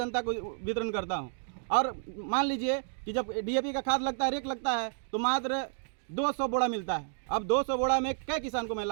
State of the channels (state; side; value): silent; left; digital silence